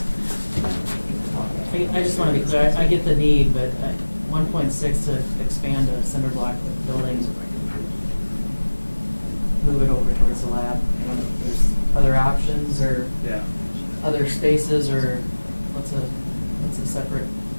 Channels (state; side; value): inverted; both; correlation -1.00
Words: I just want to be clear, I get the need, but 1.6 to expand a cinder block building, move it over towards the lab. I don't know if there's other options or Yeah. other spaces, or what's a separate